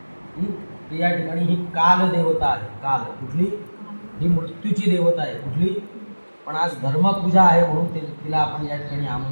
तर या ठिकाणी ही काल देवता आहे. काल कुठली? ही मृत्यूची देवता आहे. कुठली? पण आज धर्मपूजा आहे म्हणून तिला आपण या ठिकाणी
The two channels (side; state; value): both; inverted; correlation -1.00